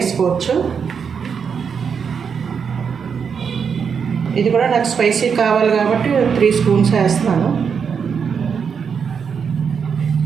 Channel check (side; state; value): left; quieter; 6.5 dB